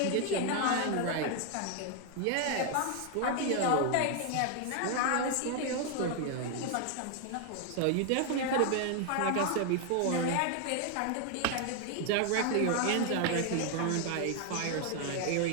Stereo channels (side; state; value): both; different; correlation 0.00